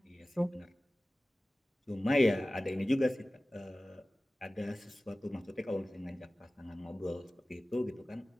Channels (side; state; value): both; normal; correlation 0.97